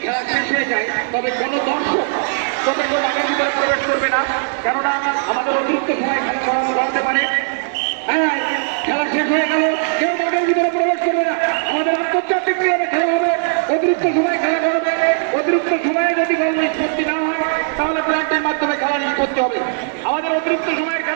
খেলা শেষ হয়ে যায়, তবে কোনো দর্শক তবে কেউ মাঠের ভিতরে প্রবেশ করবে না, কেননা আমাদের অতিরিক্ত সময় খেলা করানো করাতে পারে। হ্যাঁ, খেলা শেষ হয়ে গেল, কেউ মাঠের ভিতরে প্রবেশ করবে না। আমাদের আন্তর্জাতিক নিয়মে খেলা হবে, অতিরিক্ত সময় খেলা করবে। অতিরিক্ত সময়ে যদি গোল নিষ্পত্তি না হয় তাহলে প্ল্যান্টের মাধ্যমে খেলা নিষ্পত্তি হবে। আমাদের অতিরিক্ত সময়ের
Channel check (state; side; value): silent; left; 67 dB below the other